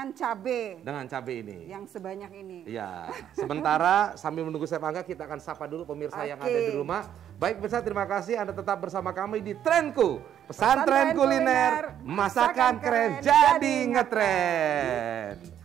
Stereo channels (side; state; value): left; quieter; 10.1 dB